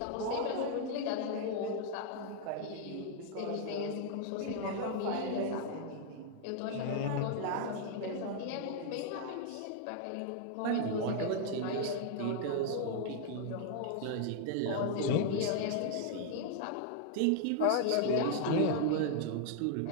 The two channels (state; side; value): different; both; correlation 0.00